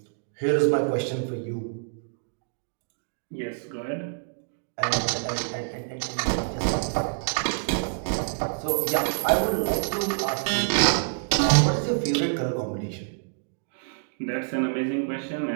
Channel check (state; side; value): silent; left; digital silence